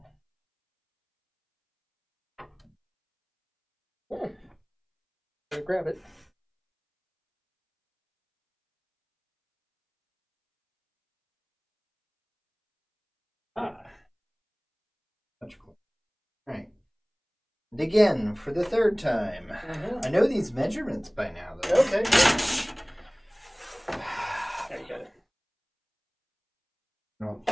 Gotta grab it. Much cooler. Right. And again, for the third time. I know these measurements by now, though. Okay. There you got it. I don't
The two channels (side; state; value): both; identical; correlation 1.00